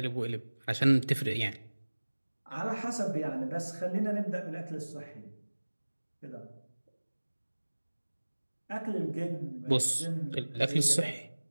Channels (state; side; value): inverted; both; correlation -1.00